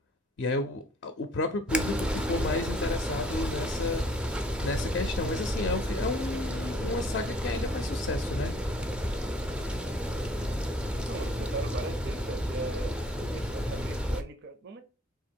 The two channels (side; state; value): both; normal; correlation 0.58